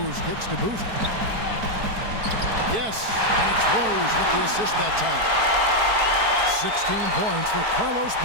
kicks to Boozer. Yes, and it's Rose with the assist that time. 16 points for Carlos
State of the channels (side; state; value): left; late; 4.6 ms